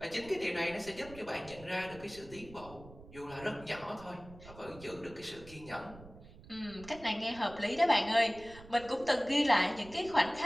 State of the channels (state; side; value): noise; right; rumble, 18 dB below the sound